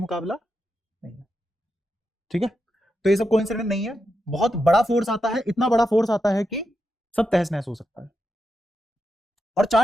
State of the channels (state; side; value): normal; both; correlation 0.86